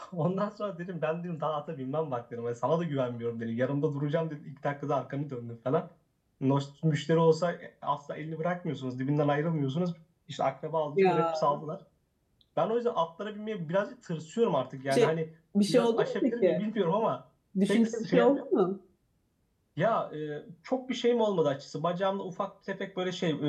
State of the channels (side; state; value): both; identical; correlation 1.00